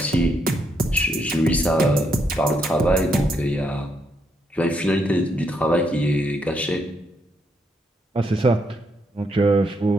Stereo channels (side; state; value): both; normal; correlation 0.77